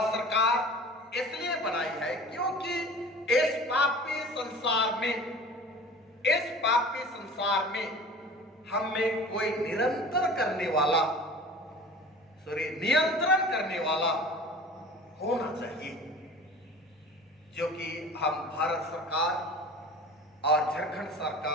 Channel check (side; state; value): both; normal; correlation 0.40